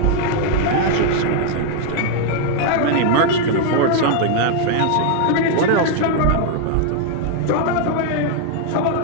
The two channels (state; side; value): different; both; correlation 0.00